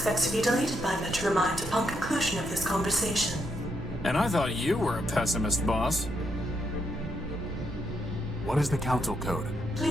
to be deleted by Metromind upon conclusion of this conversation. And I thought you were a pessimist, boss. What is the Council Code?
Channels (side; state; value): both; normal; correlation 0.79